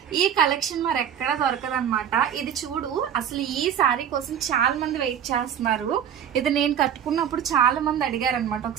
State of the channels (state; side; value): quieter; left; 9.1 dB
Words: ఈ కలెక్షన్ మరి ఎక్కడ దొరకదు అనమాట. ఇది చూడు, అసలు ఈ సారీ కోసం చాలా మంది వెయిట్ చేస్తున్నారు. ఇది నేను కట్టుకున్నప్పుడు చాలా మంది అడిగారు అనమాట.